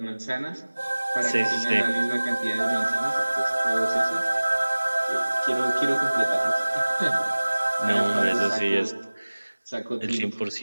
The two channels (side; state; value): both; inverted; correlation -1.00